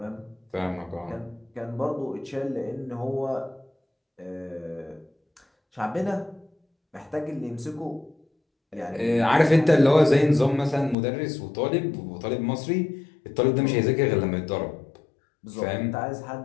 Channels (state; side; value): drops out; right; at 11.0 s